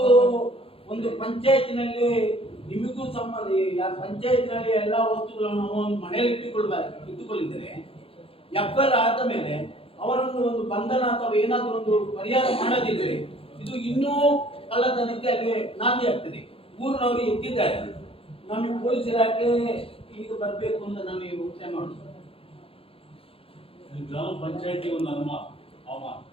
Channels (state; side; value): late; right; 0.27 ms